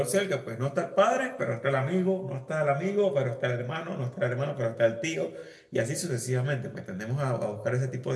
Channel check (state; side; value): identical; both; correlation 1.00